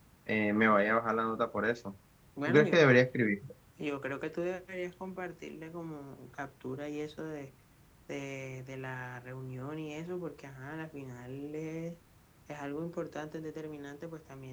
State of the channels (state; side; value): identical; both; correlation 1.00